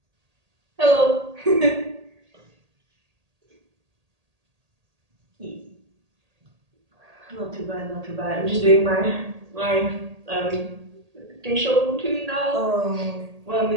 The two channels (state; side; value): late; left; 1.8 ms